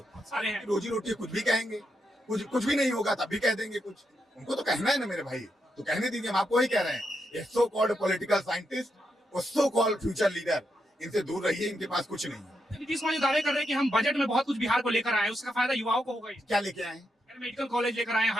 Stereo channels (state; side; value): normal; both; correlation 0.83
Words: सारे हैं। रोजी रोटी कुछ भी कहेंगे, कुछ भी नहीं होगा तब भी कह देंगे कुछ। उनको तो कहना है ना मेरे भाई, तो कहने दीजिए। हम आपको ही कह रहे हैं, ये सो कॉल्ड पॉलिटिकल साइंटिस्ट और सो कॉल्ड फ्यूचर लीडर, इनसे दूर रहिए, इनके पास कुछ नहीं है। नीतीश कुमार दावे कर रहे हैं कि हम बजट में बहुत कुछ बिहार को लेकर आए, उसका फायदा युवाओं को होगा। क्या लेके आए? मेडिकल कॉलेज लेकर आए,